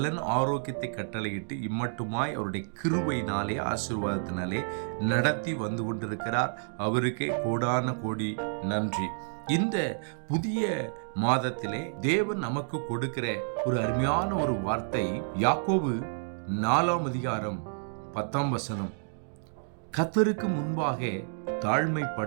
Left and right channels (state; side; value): silent; left; digital silence